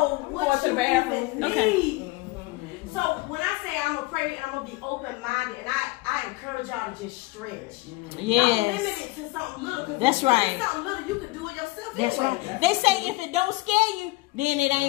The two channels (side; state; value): right; quieter; 22.0 dB